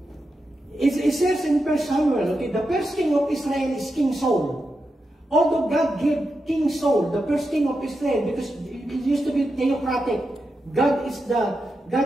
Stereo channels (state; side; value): normal; both; correlation 0.87